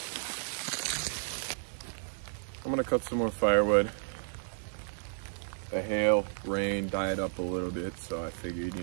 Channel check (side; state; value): left; silent; digital silence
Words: I'm gonna cut some more firewood. The hail, rain died up a little bit, so I figured,